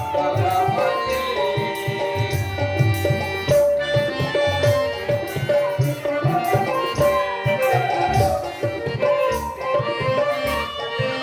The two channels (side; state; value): both; identical; correlation 1.00